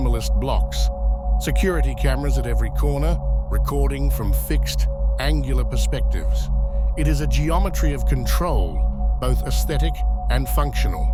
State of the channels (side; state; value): both; identical; correlation 1.00